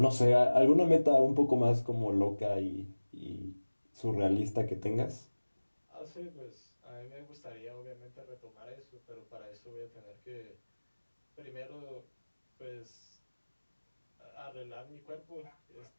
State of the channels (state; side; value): inverted; both; correlation -1.00